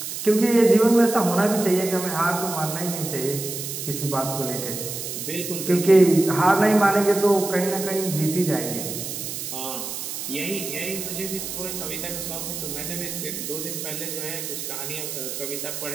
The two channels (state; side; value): noise; right; hiss, 6 dB below the sound